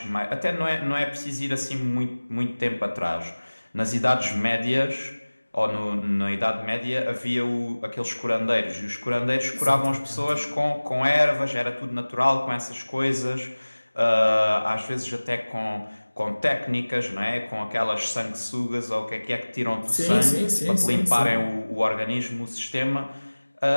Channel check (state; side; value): inverted; both; correlation -1.00